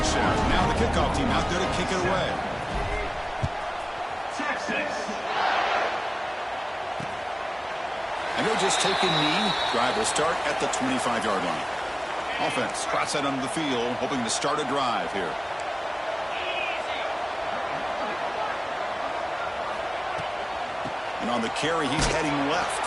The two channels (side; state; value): both; identical; correlation 1.00